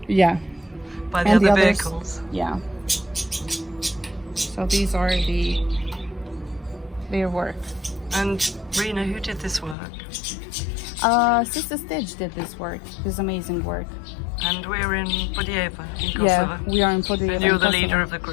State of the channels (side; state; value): right; drops out; at 9.8 s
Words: Yeah. by the And other the others- vehicles. Yeah. So these are their work. And Rena, who did this work? Sister Stitch did this work, this amazing work. And we're in Budjeva, in Kosovo. Yeah, we are in Podijeva. And you're in the Kosovo. leader of the